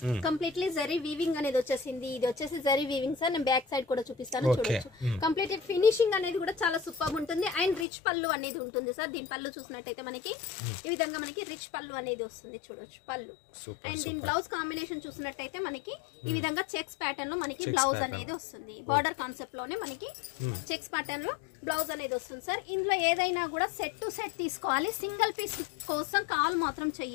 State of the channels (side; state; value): right; drops out; at 7.9 s